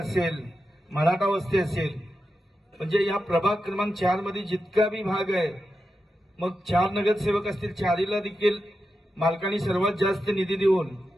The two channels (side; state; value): both; normal; correlation 0.89